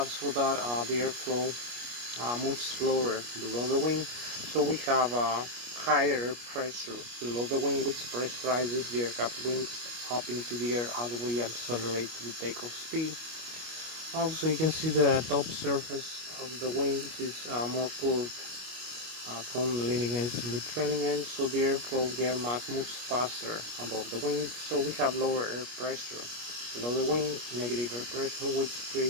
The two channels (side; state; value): left; late; 25 ms